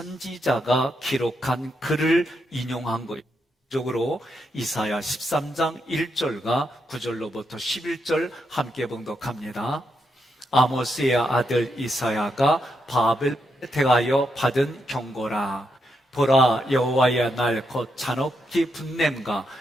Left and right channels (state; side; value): normal; both; correlation 0.81